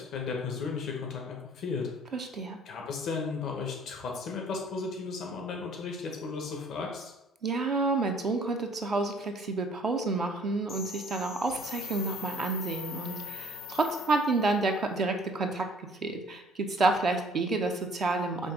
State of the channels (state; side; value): normal; both; correlation 0.56